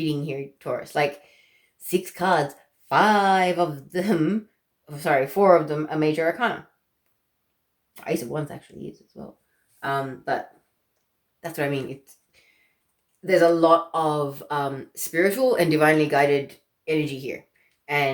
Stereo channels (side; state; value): both; identical; correlation 1.00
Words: here, Taurus. Like 6 cards, 4 of them are major arcana. Ace of Wands actually is as well. But that's what I mean. There's a lot of spiritual and divinely guided energy here.